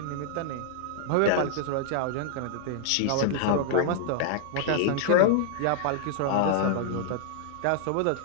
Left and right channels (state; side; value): different; both; correlation -0.01